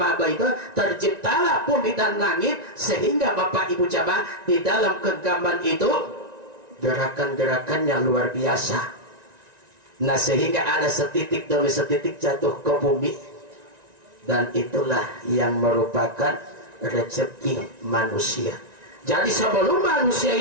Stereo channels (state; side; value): late; left; 1.9 ms